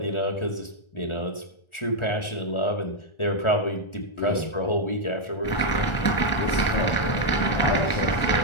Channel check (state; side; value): late; right; 1.4 ms